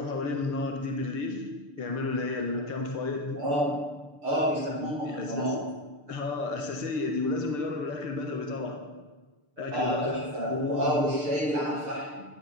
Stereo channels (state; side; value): late; left; 6.7 ms